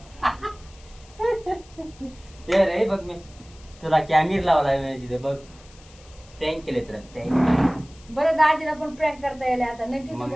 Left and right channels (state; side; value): noise; left; hiss, 25 dB below the sound